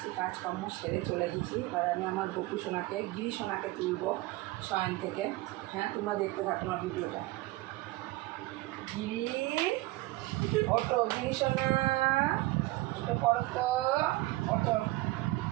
কাজকর্ম সেরে চলে গেছি। এবার আমি আমার গপু সোনাকে, গিরি সোনাকে তুলবো শয়ন থেকে। হ্যাঁ, তোমরা দেখতে থাকো আমার ভিডিওটা। গিরি, অটো গিরি সোনা, ওটা পড়ো তো, অটো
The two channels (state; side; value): quieter; left; 19.7 dB